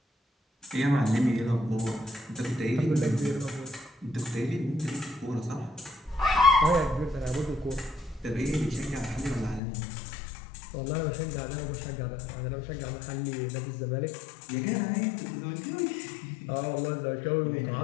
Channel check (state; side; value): drops out; right; at 9.6 s